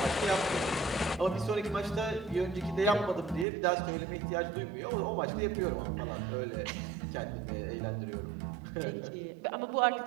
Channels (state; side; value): drops out; left; at 3.5 s